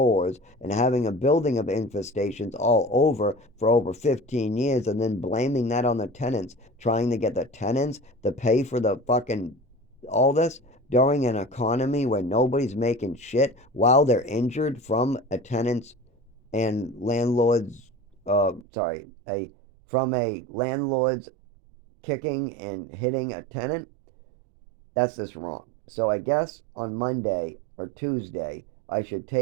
and having a building of infestations all over for over 15 years and then blaming that on the tenants, trying to get the tenants to pay for the fucking all this during an economy where nobody's making shit while they're injured from a tenant's and landlord's from a landlord's kicking and hitting a tenant. That's just wrong. So I guess on Monday or Tuesday, I should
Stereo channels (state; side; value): drops out; left; at 18.7 s